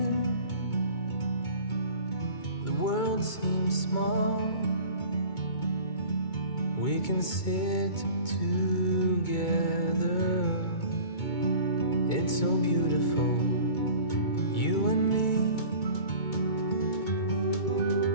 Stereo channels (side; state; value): right; late; 2.2 ms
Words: the world seems small. We can sit together. It's so beautiful, you and me.